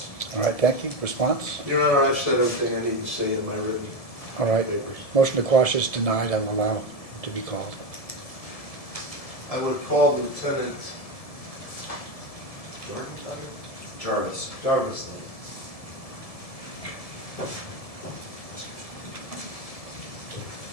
All right, thank you. Response? Your Honor, I've said everything I need to say in my written All right. papers. Motion to quash is denied. I will allow him to be called. I would call Lieutenant Jarvis. Jarvis.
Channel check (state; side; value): late; right; 1.7 ms